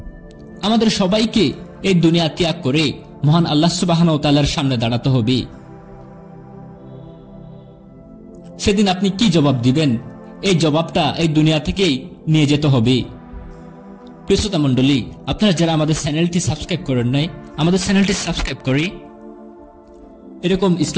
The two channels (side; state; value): both; identical; correlation 1.00